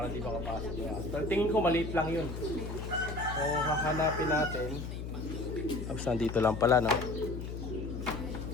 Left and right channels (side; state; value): left; noise; hum, 6 dB below the sound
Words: di makapasok yung ahas. Pero tingin ko maliit lang yun. So hahanapin natin. Tapos nandito lang pala, no?